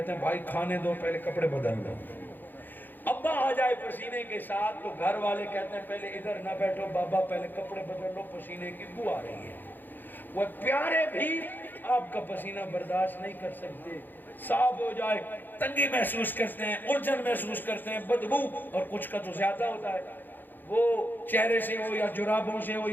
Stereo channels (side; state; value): right; late; 0.089 ms